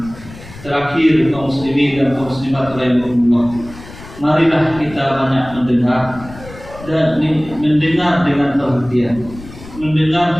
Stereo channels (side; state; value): left; noise; rumble, 17 dB below the sound